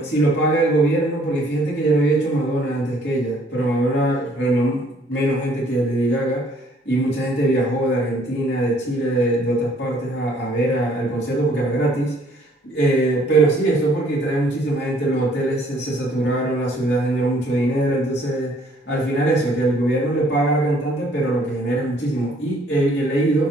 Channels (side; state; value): both; normal; correlation 0.61